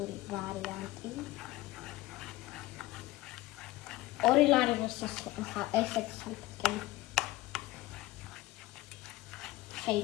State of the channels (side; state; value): right; quieter; 18.0 dB